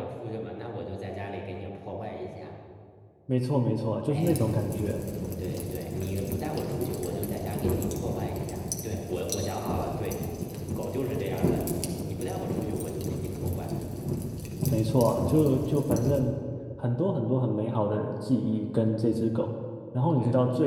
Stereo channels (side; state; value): both; identical; correlation 1.00